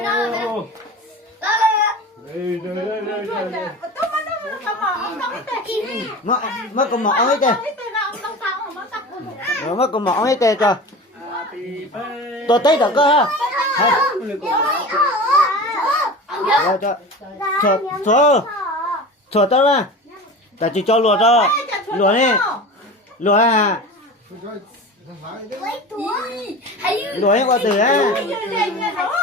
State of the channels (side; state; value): both; normal; correlation 0.33